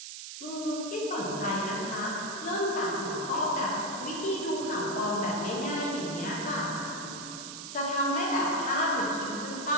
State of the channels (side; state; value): right; noise; hiss, 9 dB below the sound